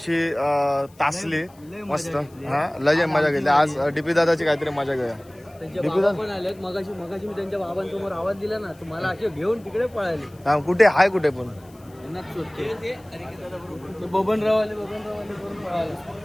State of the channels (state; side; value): noise; left; hiss, 29 dB below the sound